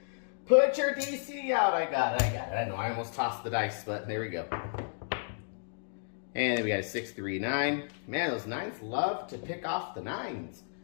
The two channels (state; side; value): silent; right; digital silence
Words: put your DC out. I got it. I know I almost tossed the dice, but there we go. And then we got a 6, 3, 9. Man, those 9s love to pick off the 9s.